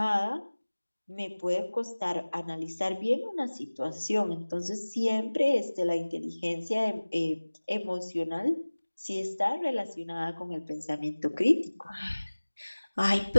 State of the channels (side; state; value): both; inverted; correlation -1.00